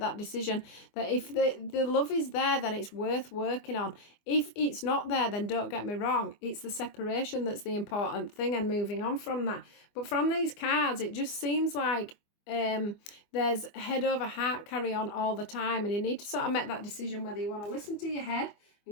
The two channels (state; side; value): late; right; 24 ms